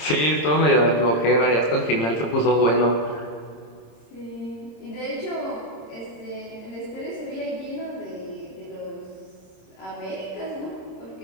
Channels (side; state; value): right; late; 26 ms